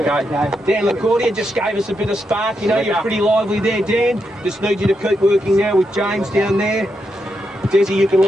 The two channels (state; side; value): normal; both; correlation 0.83